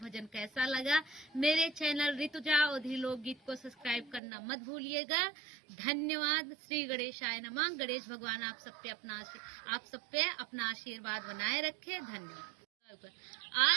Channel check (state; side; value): drops out; left; at 4.2 s